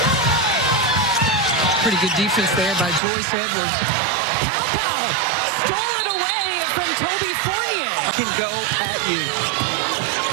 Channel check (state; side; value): drops out; left; at 3.0 s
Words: Pretty good defense there by Joyce Edwards. Pow stole it away from Toby Fournier. Can go at you.